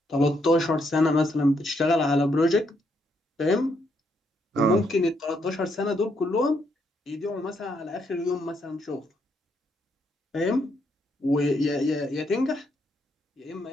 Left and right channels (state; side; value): normal; both; correlation 0.76